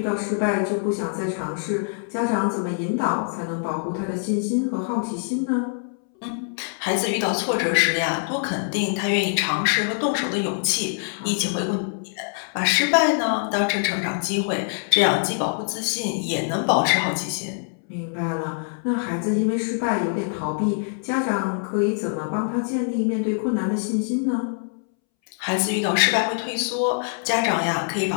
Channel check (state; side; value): silent; right; 63 dB below the other